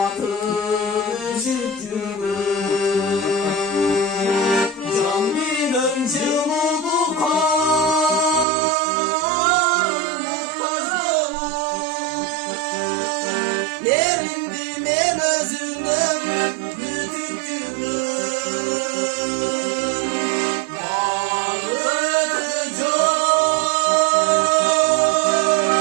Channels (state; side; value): drops out; left; at 8.5 s